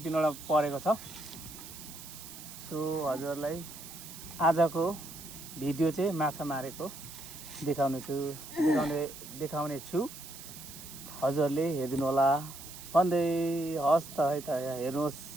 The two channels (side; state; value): right; noise; hiss, 13 dB below the sound